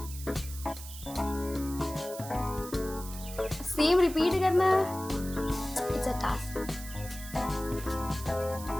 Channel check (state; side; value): noise; right; hiss, 13 dB below the sound